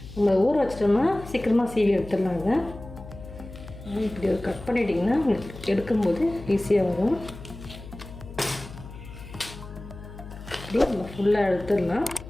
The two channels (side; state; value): left; noise; hum, 14 dB below the sound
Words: நம்ம ஊற வச்சிட்டோம்னா சீக்கிரமாக சீவி எடுத்துடலாங்க. இப்படி ஒரு கட் பண்ணிட்டிங்கன்னா உங்களுக்கு எடுக்கும்போது ஈஸியாக வரும். இப்படி நம்ம ஃபுல்லாக எடுத்துடலாம்.